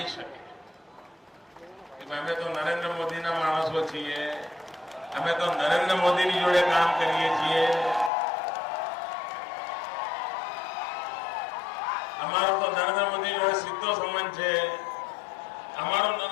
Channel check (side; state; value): right; drops out; at 8.1 s